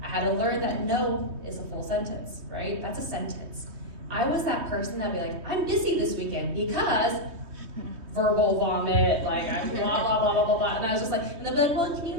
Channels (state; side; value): late; left; 3.2 ms